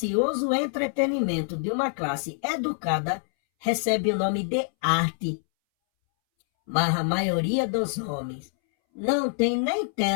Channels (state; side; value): silent; right; 61 dB below the other